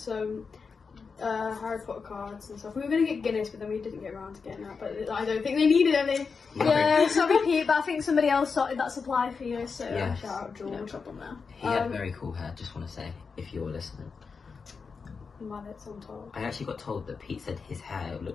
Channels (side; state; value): right; quieter; 5.2 dB